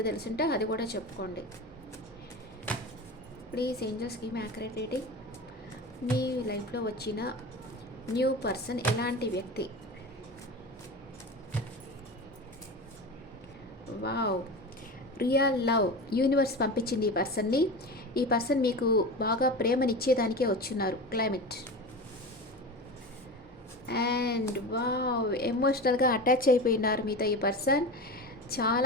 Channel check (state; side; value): normal; both; correlation 0.27